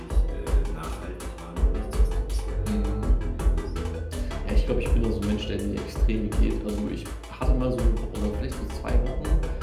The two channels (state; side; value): identical; both; correlation 1.00